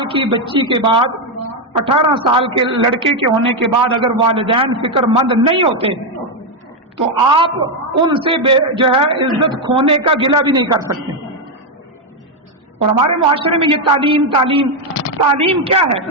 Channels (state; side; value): normal; both; correlation 0.04